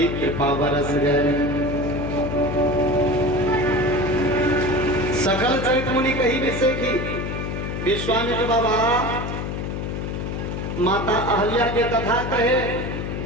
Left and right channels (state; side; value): noise; left; hum, 4 dB below the sound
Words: कृपा बरस गए। सकल चरित मुनि कही विषय की विश्वामित्र बाबा माता अहल्या के कथा कहे,